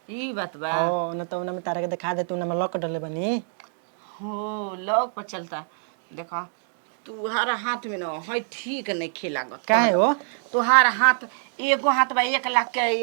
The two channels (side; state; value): left; silent; digital silence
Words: ई बात बा ओ न तो उनमें तारा के दिखा दे तू न लॉक डले बनी हो लॉक पर चलता देखा तुहारा हाथ में ना है ठीक नहीं खेलागत काहे हो तुहारा हाथ एगो हाथ बा 1 लाख के